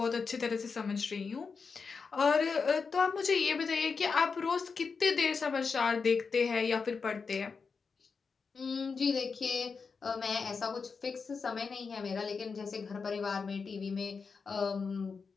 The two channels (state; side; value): quieter; right; 5.1 dB